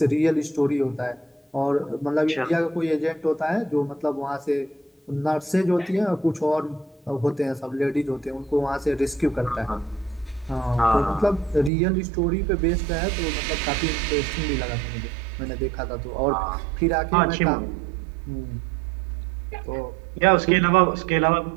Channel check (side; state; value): left; drops out; at 11.7 s